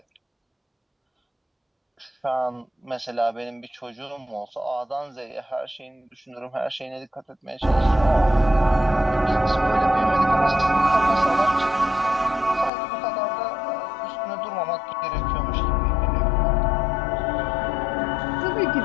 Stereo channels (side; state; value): right; drops out; at 12.7 s